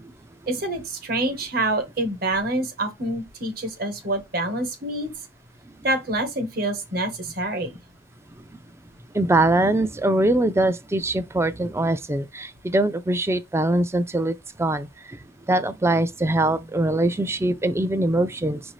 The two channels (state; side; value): normal; both; correlation 0.60